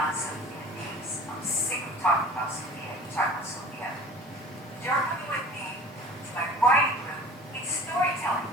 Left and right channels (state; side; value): normal; both; correlation 0.42